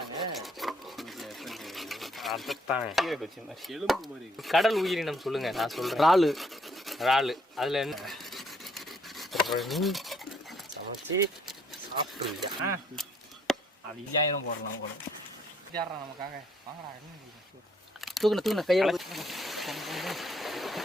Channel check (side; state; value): both; normal; correlation 0.67